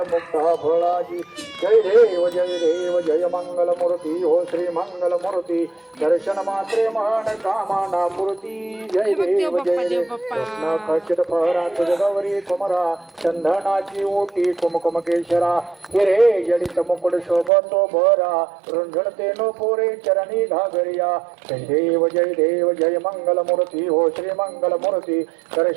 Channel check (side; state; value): left; drops out; at 17.5 s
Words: मुक्ता फळाजी जय देव जय मंगल मूर्ती हो श्री मंगल मूर्ती दर्शन मात्रे मान कामना मूर्ती जय देव कृष्ण खचित फहरा तुझ गौरी कुमरा चंदनाची ओटी कुमकुम केशरा हिरे जडित मुकुट शोभतो भरा रुंझणते नो पोरे चरणी घागरिया जय देव जय मंगल मूर्ती हो श्री मंगल मूर्ती